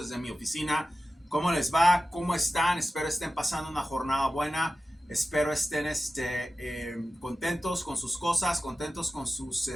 mi oficina. ¿Cómo les va? ¿Cómo están? Espero estén pasando una jornada buena. Espero estén contentos con sus cosas, contentos con sus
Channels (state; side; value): normal; both; correlation 0.94